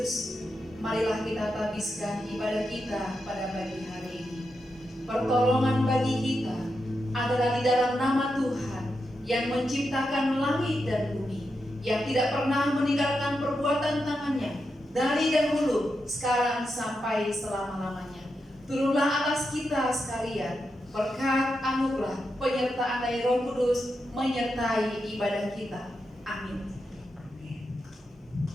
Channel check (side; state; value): both; normal; correlation 0.86